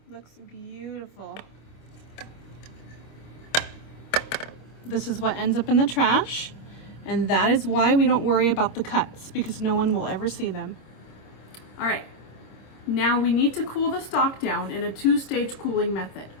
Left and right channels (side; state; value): right; late; 26 ms